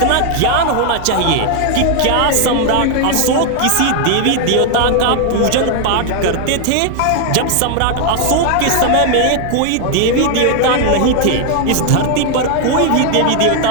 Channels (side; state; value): both; different; correlation 0.00